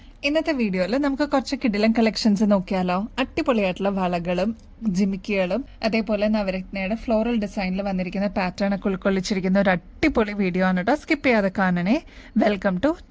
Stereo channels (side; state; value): both; identical; correlation 1.00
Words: ഇന്നത്തെ വീഡിയോയിൽ നമുക്ക് കുറച്ച് കിടിലൻ കളക്ഷൻസ് നോക്കിയാലോ. അടിപൊളിയായിട്ടുള്ള വളകളും ജിമിക്കികളും അതേപോലെ നവരത്നയുടെ ഫ്ലോറൽ ഡിസൈനിൽ വന്നിരിക്കുന്ന പാറ്റേൺ ഒക്കെ ഉൾക്കൊള്ളിച്ചിരിക്കുന്ന ഒരു അടിപൊളി വീഡിയോ ആണ് കേട്ടോ. സ്കിപ്പ് ചെയ്യാതെ കാണണേ. Welcome to